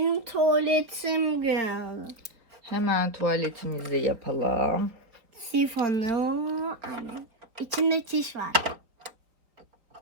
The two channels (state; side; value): late; left; 4.2 ms